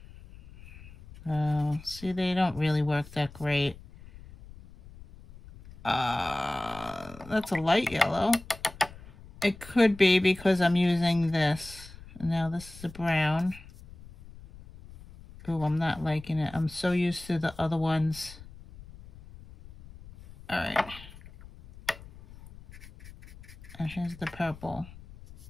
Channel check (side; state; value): left; noise; rumble, 18 dB below the sound